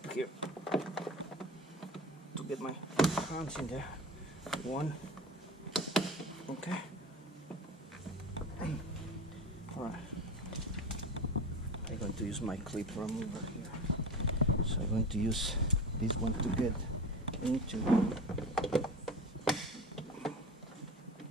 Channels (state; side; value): normal; both; correlation 0.30